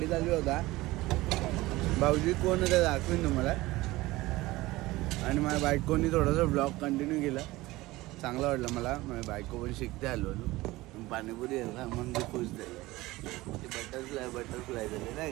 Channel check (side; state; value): left; quieter; 19.2 dB